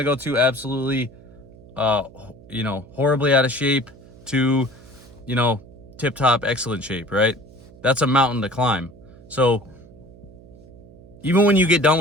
go to absolutely, horribly out of shape to, tip-top excellent shape, right? That's a mountain to climb. So even when you get done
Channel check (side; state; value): right; noise; hum, 22 dB below the sound